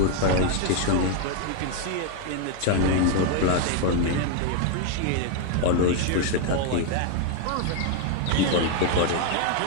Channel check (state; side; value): different; both; correlation 0.00